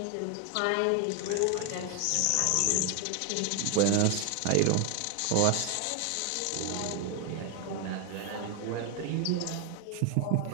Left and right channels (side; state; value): both; different; correlation 0.01